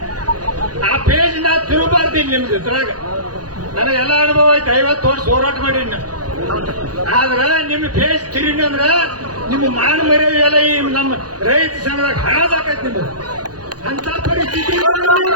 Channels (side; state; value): left; late; 0.69 ms